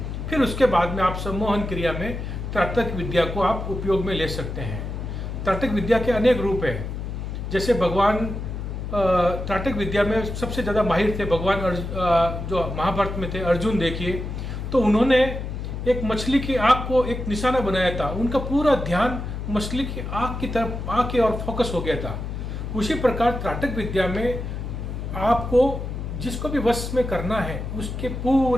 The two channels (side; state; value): left; noise; hum, 5 dB below the sound